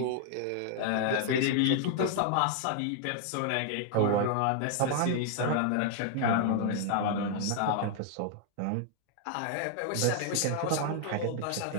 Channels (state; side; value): different; both; correlation 0.00